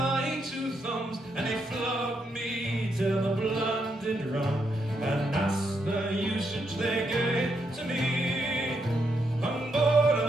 two thumbs, and they flogged me till the blood did run, and that's the usage they gave to me. On board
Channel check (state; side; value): normal; both; correlation 0.79